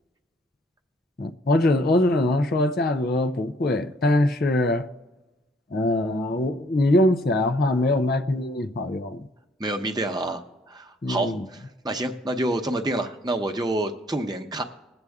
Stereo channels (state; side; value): normal; both; correlation 0.63